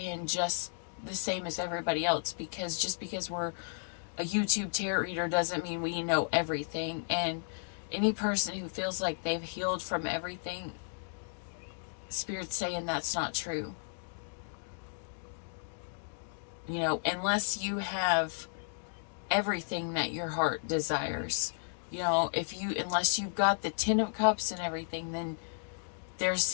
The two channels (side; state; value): right; silent; digital silence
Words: just the same as everybody else, because just because we're a YouTube tarot reader doesn't mean we know everything. And any person who feels like they've healed from everything, Spirit's saying that's not true. You know, unless you have everything that your heart desires. You know, unless you've got the 10 of Cups and everything, then there's